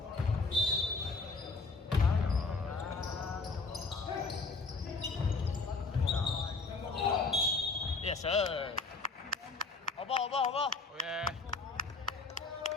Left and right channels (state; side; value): quieter; right; 3.9 dB